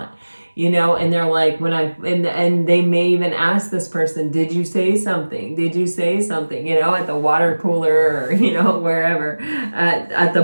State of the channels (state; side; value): inverted; both; correlation -1.00